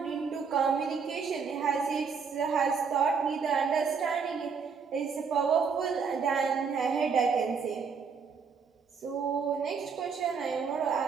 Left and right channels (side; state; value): left; quieter; 5.8 dB